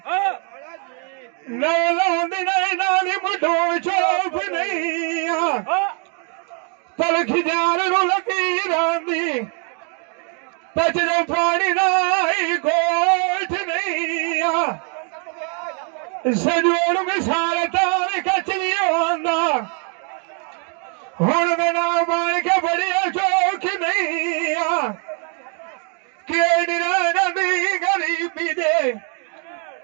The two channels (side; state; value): left; quieter; 39.4 dB